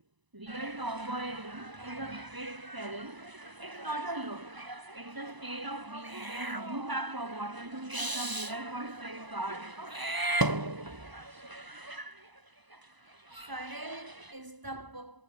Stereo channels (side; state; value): left; late; 1.0 ms